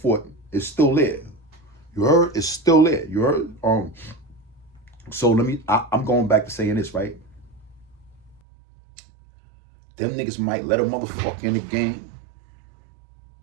it, it's still there. You heard? It's still there. You heard? So I'm going back to saying this, right? Them niggas might let a motherfucker in the game.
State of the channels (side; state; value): left; drops out; at 8.4 s